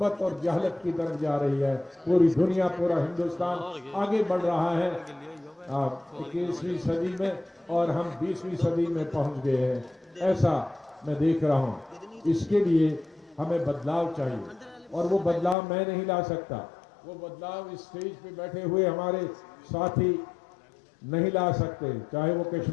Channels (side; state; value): right; drops out; at 15.6 s